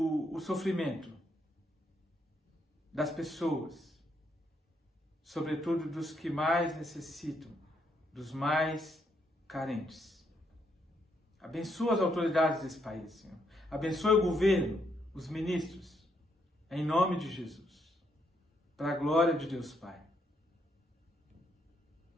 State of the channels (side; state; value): both; normal; correlation 0.75